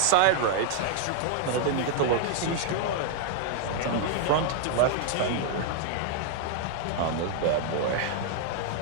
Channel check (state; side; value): different; both; correlation 0.00